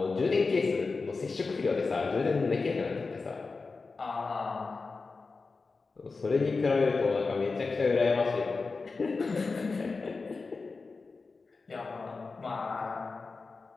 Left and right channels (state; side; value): quieter; right; 4.2 dB